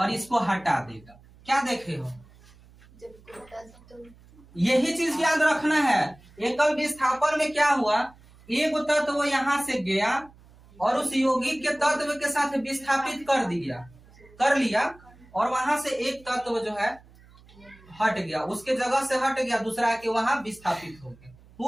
इसको हटा देगा। क्या देखे हो? यही चीज याद रखना है। एकल विस्थापन में क्या हुआ? एक तत्व यहाँ से गया और उस यौगिक के तत्व के साथ विस्थापित कर लिया, और वहां से एक तत्व जो है हट गया, उसके जगह से हट गया, दूसरा के वहां विस्थापित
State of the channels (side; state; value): right; noise; hum, 25 dB below the sound